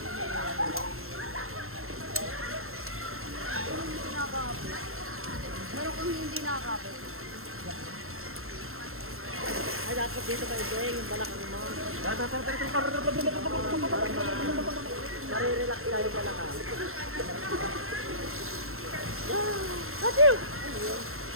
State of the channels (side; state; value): left; late; 0.62 ms